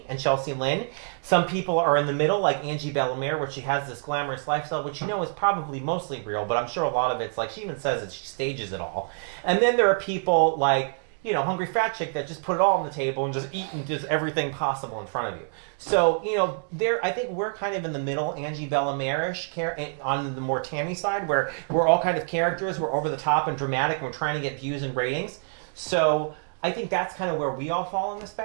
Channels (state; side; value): silent; left; 61 dB below the other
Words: and Chelsea Lynn. Some people are in the middle like Angie Bellamere, where she has this glamorous lifestyle, which you know is probably mostly real, but I'm sure a lot of it's like, she even says it, she stages it all. And then there are people like, you know, Hungry Fat Chick that just put it all on the table and just eat and does everything possible in front of you. So, you know, I think we're kind of in the middle, Angie Bellamere-ish, on the more Tammy side, where we're all kind of characters, we're over the top and dramatic, and we're trying to get views and ratings. So I think that's kind of where we all fall on the